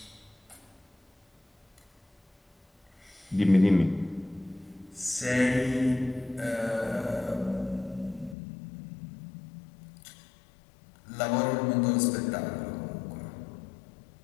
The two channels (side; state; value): right; drops out; at 8.3 s